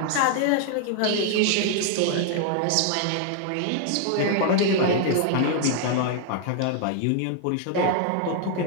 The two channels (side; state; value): both; different; correlation 0.00